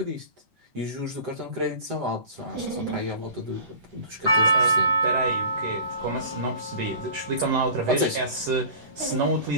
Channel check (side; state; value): left; late; 7.7 ms